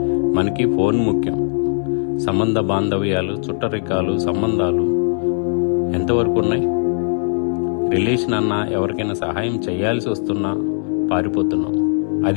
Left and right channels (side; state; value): right; silent; digital silence